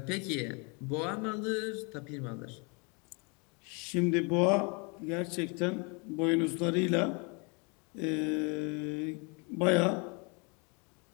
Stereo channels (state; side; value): quieter; right; 32.5 dB